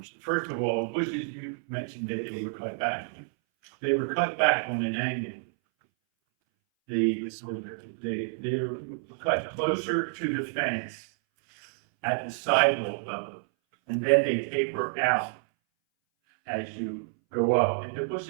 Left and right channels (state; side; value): silent; left; 59 dB below the other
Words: First of all, bushes you mentioned that they were cut back. They were cut back on an angle. They were cut closer to the fence at the sidewalk level, and then they taper out as you go up. And the